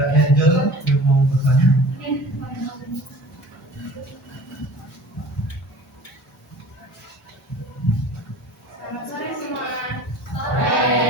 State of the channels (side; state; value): both; normal; correlation 0.44